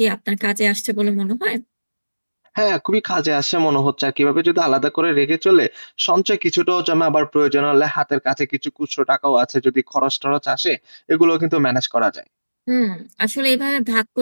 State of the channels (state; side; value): inverted; both; correlation -1.00